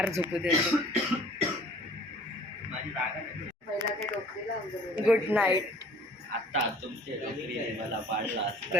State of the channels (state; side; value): normal; both; correlation 0.51